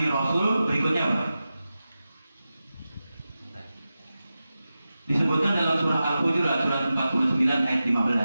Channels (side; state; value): both; inverted; correlation -0.93